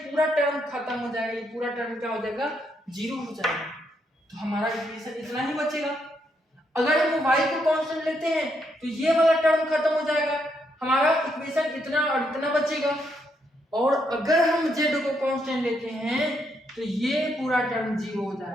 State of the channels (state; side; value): normal; both; correlation 0.77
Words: पूरा टर्म खत्म हो जाएगा, ये पूरा टर्म क्या हो जाएगा 0 हो जाएगा। तो हमारा इक्वेशन इतना ही बचेगा। अगर हम y को कांस्टेंट लेते हैं तो ये वाला टर्म खत्म हो जाएगा, हमारा इक्वेशन इतना और इतना बचेगा। और अगर हम z को कांस्टेंट लेते हैं तो ये पूरा टर्म 0 हो